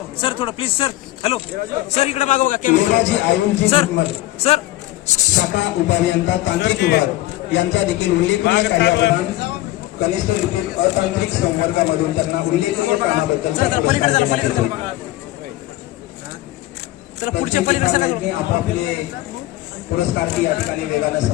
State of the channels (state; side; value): quieter; right; 16.3 dB